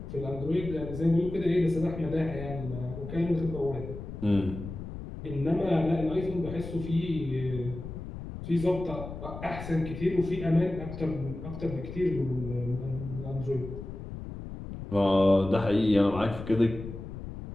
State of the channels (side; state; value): left; noise; rumble, 9 dB below the sound